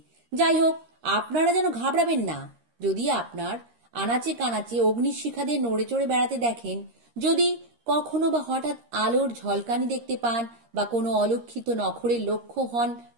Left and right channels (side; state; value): left; late; 13 ms